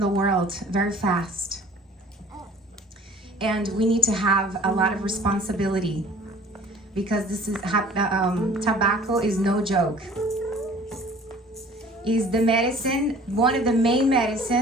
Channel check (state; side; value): normal; both; correlation 0.49